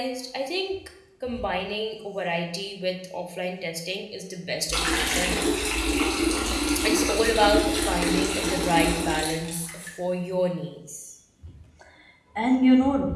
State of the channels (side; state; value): both; identical; correlation 1.00